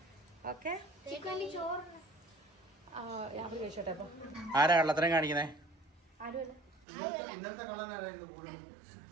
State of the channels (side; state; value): left; drops out; at 6.9 s